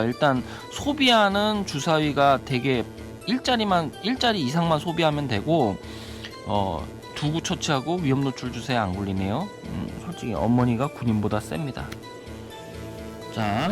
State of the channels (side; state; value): both; identical; correlation 1.00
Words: 일단 소비하는 주사위가 되게 일자리 이상만 소비하면 되고 2구 처치하고 위험 노출 주사위 안 굴리네요. 솔직히 어머니가 군인보다 셉니다.